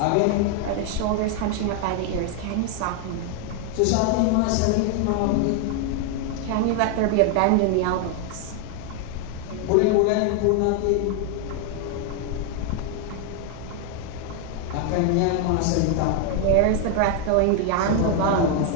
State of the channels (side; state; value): both; different; correlation 0.01